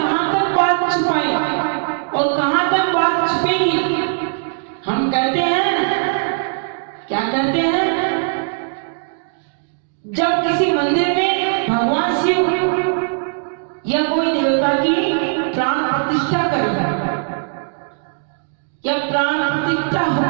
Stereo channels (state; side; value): silent; left; digital silence